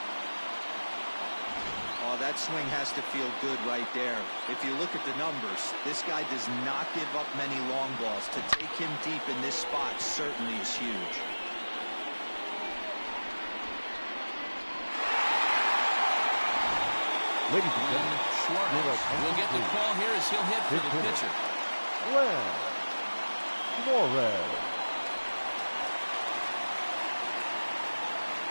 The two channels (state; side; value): inverted; both; correlation -1.00